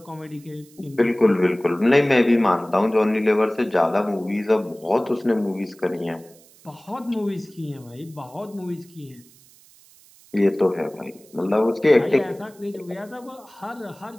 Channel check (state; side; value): noise; right; hiss, 26 dB below the sound